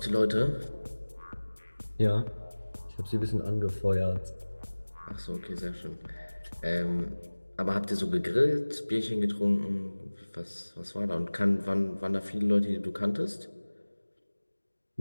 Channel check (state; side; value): inverted; both; correlation -1.00